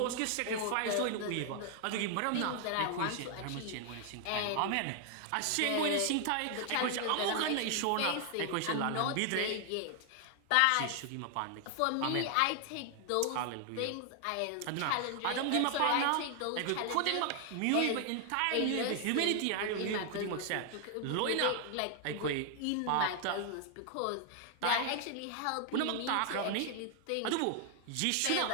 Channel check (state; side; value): different; both; correlation 0.00